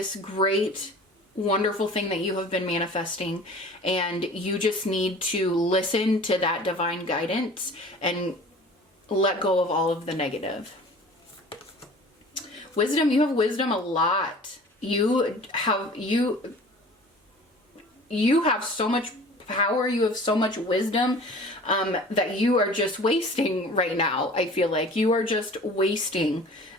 great, wonderful thing that you have been manifesting, and you just need to listen to that divine guidance and let go of all of the negative. Wisdom, you have wisdom a lot. You have so much power, you have so much wisdom that you are just wasting right now. I feel like you are just wasting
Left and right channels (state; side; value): normal; both; correlation 0.44